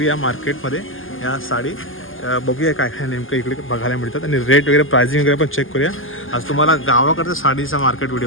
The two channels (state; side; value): late; right; 0.59 ms